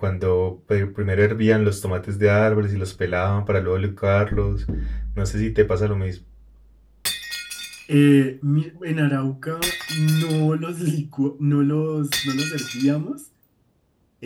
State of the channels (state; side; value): identical; both; correlation 1.00